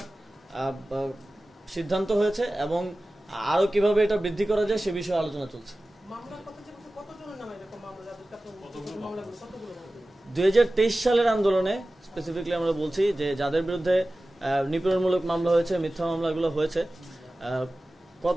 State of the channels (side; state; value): both; normal; correlation 0.96